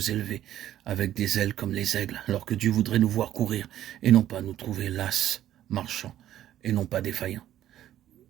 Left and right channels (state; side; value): quieter; left; 12.2 dB